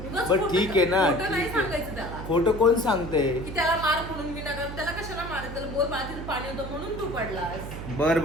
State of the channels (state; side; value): noise; right; hum, 9 dB below the sound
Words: बट खोटं- ठीक आहे ना, खोटं नाही ठीक आहे. सांगायचं त्याला खोटं कोण सांगते. की त्याला मार म्हणून मी नका. त्याला कशाला मारायचं? त्याला बोल बाळा पाणी होतं म्हणून तू पडलास. बर